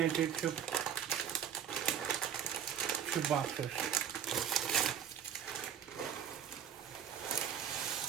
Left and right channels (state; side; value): quieter; left; 8.6 dB